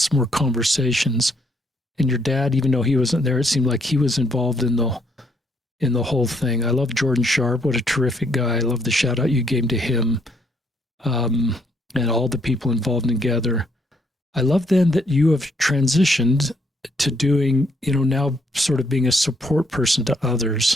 more conversations. And your dad, even though he wasn't there, it seemed like he was involved in the whole thing. I love Jordan Sharp. What a terrific guy. I love the shout out you gave to him, and all the people involved in Gather. I love then that you have transitioned to doing, now sort of being a support person to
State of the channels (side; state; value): both; normal; correlation 0.71